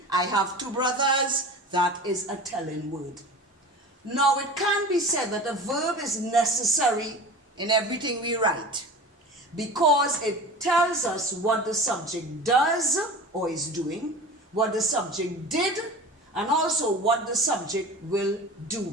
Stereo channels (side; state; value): both; normal; correlation 0.35